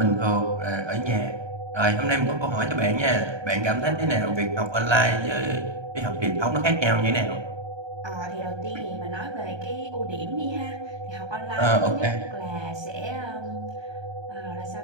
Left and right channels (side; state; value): left; late; 1.3 ms